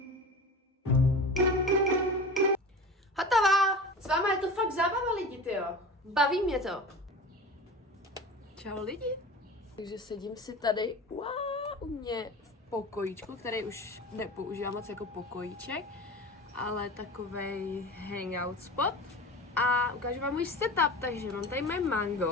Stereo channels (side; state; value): both; normal; correlation 0.33